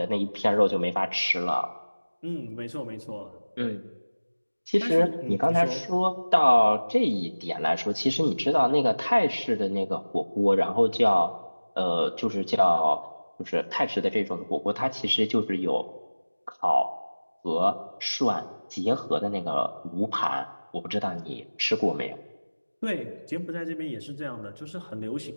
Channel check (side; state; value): both; inverted; correlation -1.00